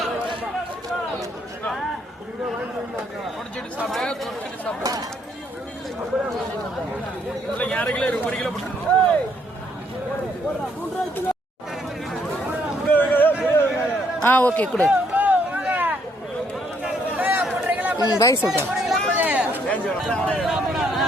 ஓகே கொடு. பாய் சொல்கிறேன்.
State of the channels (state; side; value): normal; both; correlation 0.70